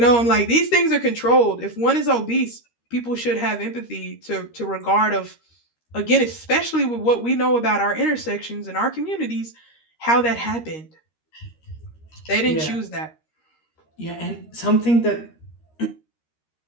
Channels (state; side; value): late; right; 13 ms